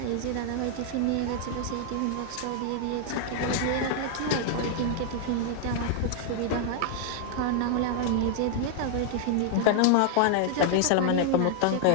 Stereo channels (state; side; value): different; both; correlation 0.00